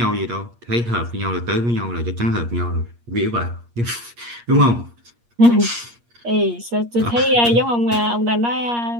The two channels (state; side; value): late; left; 8.5 ms